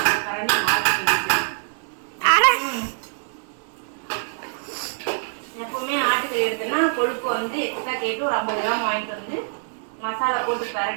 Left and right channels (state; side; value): silent; left; digital silence